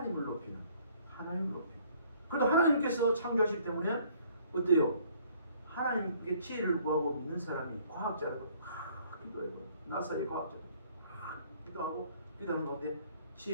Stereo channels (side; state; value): both; inverted; correlation -0.59